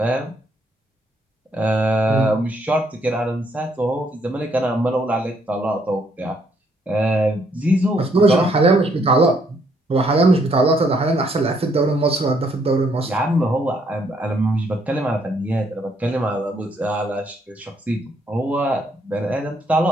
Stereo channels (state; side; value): normal; both; correlation 0.70